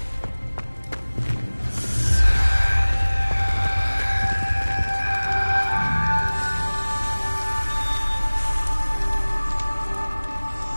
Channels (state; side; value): inverted; both; correlation -1.00